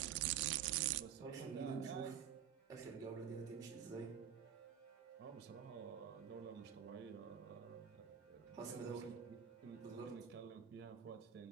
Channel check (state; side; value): quieter; left; 8.8 dB